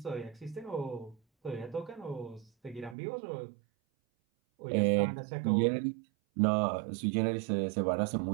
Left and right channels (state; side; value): drops out; left; at 3.0 s